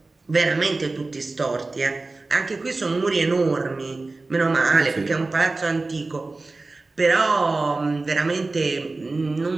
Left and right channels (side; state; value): left; quieter; 3.4 dB